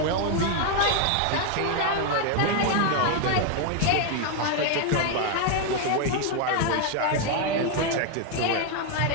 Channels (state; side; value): different; both; correlation 0.01